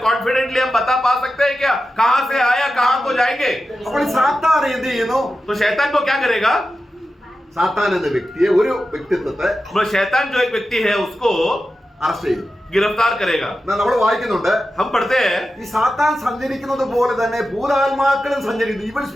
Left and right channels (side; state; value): both; normal; correlation 0.92